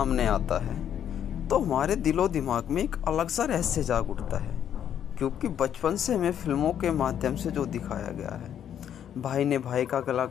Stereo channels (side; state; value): right; quieter; 9.5 dB